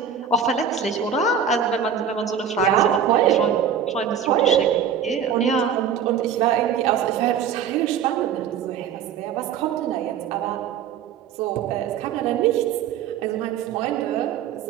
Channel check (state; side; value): quieter; left; 7.8 dB